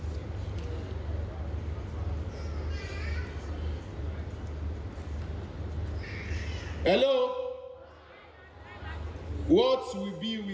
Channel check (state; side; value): identical; both; correlation 1.00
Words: Hello. What will be